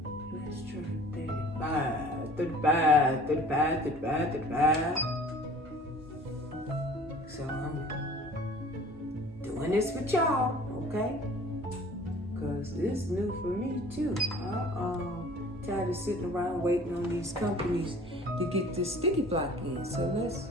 Let's try 35. So I'm doing this with y'all, okay? Because this is new for me too. Tired of sitting around waiting on these companies to get this sticky block in. So let's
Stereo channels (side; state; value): both; normal; correlation 0.48